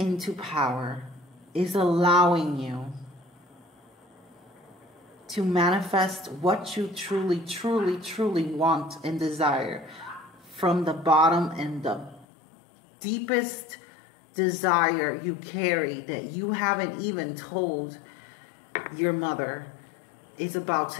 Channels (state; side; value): drops out; right; at 12.2 s